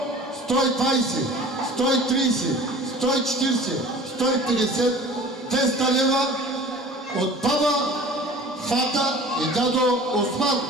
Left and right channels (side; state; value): both; normal; correlation 0.43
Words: 120, 130, 140, 150, 200 лева от баба, фата и дядо Осман.